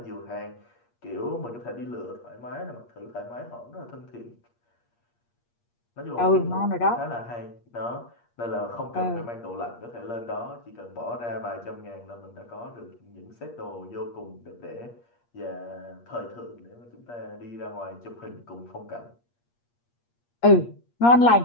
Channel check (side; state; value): right; late; 8.5 ms